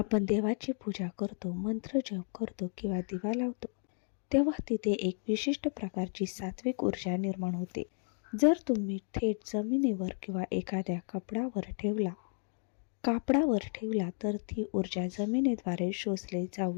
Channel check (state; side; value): silent; right; 56 dB below the other